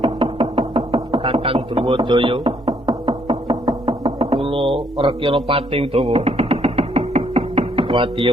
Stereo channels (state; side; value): normal; both; correlation 0.70